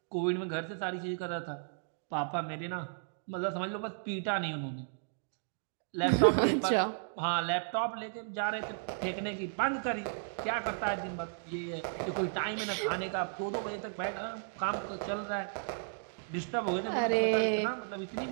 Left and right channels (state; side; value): silent; left; digital silence